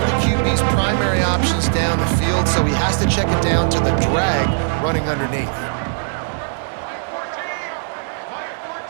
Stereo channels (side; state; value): left; silent; 66 dB below the other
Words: the QB's primary options down the field, so he has to check it down to the drag running underneath.